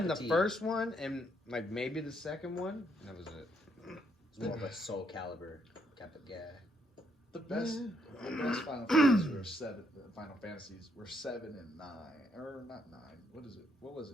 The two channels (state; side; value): normal; both; correlation 0.73